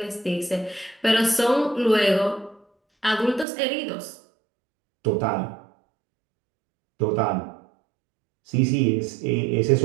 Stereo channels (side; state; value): left; drops out; at 3.5 s